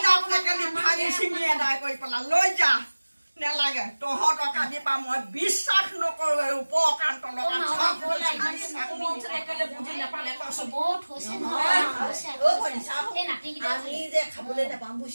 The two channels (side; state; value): both; inverted; correlation -1.00